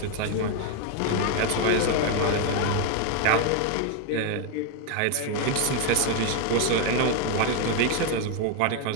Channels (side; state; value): both; different; correlation 0.01